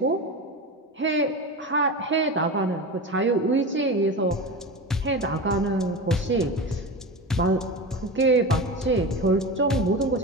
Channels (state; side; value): normal; both; correlation 0.26